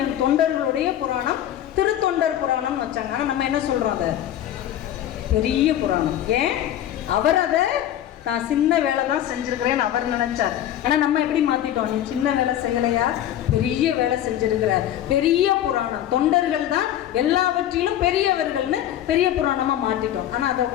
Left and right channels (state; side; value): quieter; right; 11.7 dB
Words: தொண்டர்களுடைய புராணம் திருத்தொண்டர் புராணம் வச்சாங்க. ஆனா நம்ம என்ன சொல்றோம்? பெரிய புராணம். ஏன்? அவர் அதை நான் சின்ன வேலை தான் செஞ்சிருக்கிறேன்னு அவர் நினைச்சார். ஆனா நம்ம எப்படி மாத்திட்டோம்? நீ சின்ன வேலை செய்யலையா, பெரிய வேலை செஞ்சிருக்கிற. பெரிய புராணம், தொண்டர்கள் தான் எல்லாவற்றிலும் பெரியவர்கள்னு பெரிய புராணமா மாத்திட்டோம். ஆனா அதை